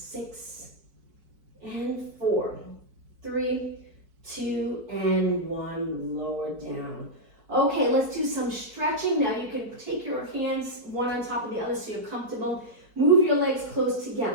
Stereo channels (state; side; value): late; left; 4.5 ms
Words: and 4, 3, 2, and 1, lower down. Okay, let's do some stretching. Now you can take your hands one on top of the other so you're comfortable. Move your legs close